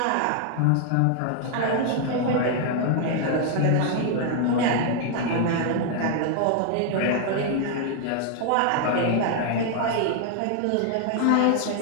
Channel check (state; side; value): different; both; correlation 0.00